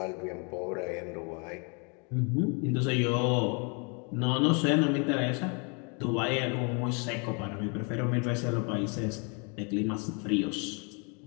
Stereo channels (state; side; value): quieter; right; 35.1 dB